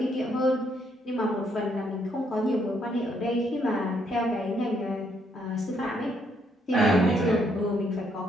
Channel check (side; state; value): both; normal; correlation 0.72